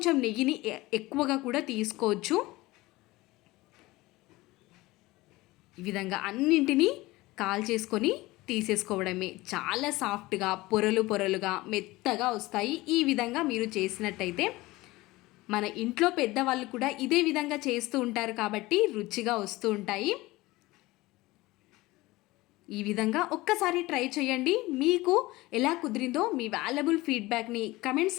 నెయ్యిని ఎక్కువగా కూడా తీసుకోవచ్చు. ఈ విధంగా అన్నింటినీ కాల్ చేసుకొని తీసేసుకోవడమే. చాలా సాఫ్ట్గా పొరలుగా మెత్తగా వస్తాయి. ఈ విధంగా మీరు చేసినట్టయితే మన ఇంట్లో పెద్దవాళ్ళు కూడా ఇదే విధంగా చేస్తూ ఉంటారు కాబట్టి రుచిగా వస్తూ ఉంటాయి. ఈ విధంగా ఒక్కసారి ట్రై చేయండి. మీకు ఎలా కుదిరిందో మీ వాల్యుబుల్ ఫీడ్బ్యాక్ని కమెంట్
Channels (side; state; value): right; quieter; 19.9 dB